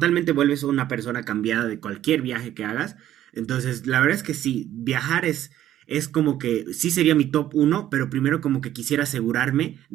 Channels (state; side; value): quieter; left; 12.3 dB